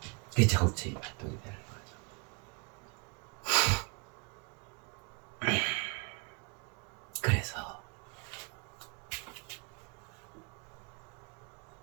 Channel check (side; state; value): left; quieter; 32.3 dB